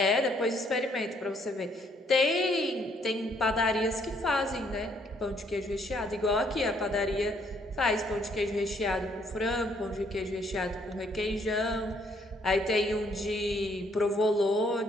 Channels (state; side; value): normal; both; correlation 0.68